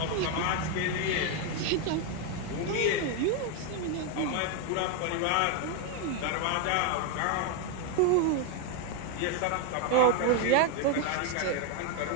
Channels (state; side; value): different; both; correlation 0.01